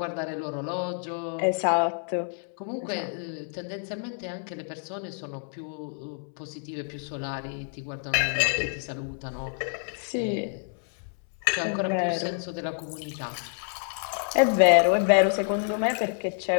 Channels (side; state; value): right; silent; 59 dB below the other